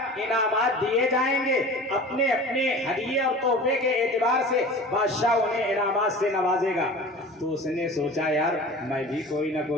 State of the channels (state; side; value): normal; both; correlation 0.38